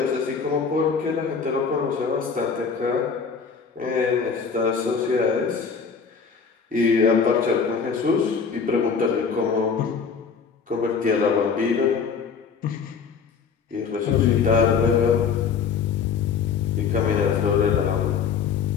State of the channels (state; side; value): quieter; right; 5.9 dB